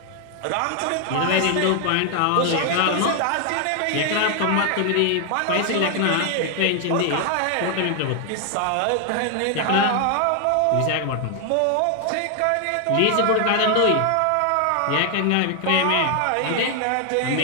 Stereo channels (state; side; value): different; both; correlation 0.00